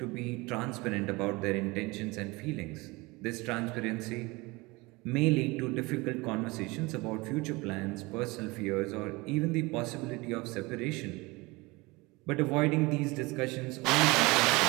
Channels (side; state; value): left; quieter; 23.8 dB